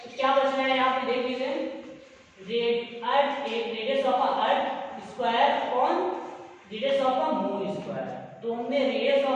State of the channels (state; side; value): identical; both; correlation 1.00